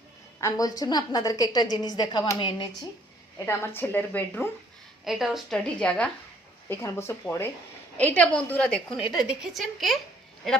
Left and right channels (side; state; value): both; normal; correlation 0.62